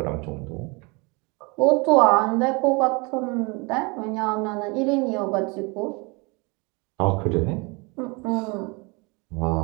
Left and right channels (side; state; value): left; quieter; 28.6 dB